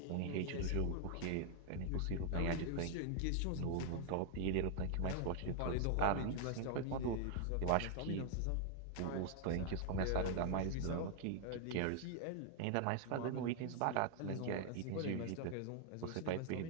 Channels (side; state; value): both; different; correlation 0.00